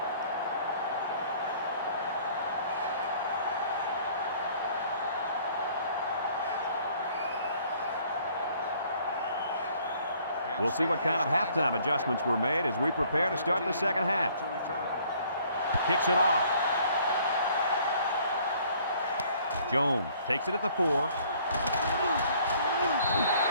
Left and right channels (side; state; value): both; inverted; correlation -0.59